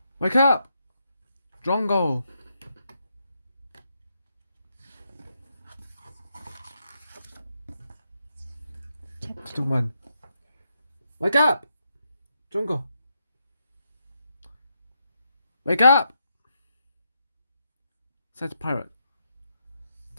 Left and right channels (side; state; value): both; inverted; correlation -0.81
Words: Wake up! Drongo! Chapter 1. Wake up! Drongo! Wake up! Said the pirate.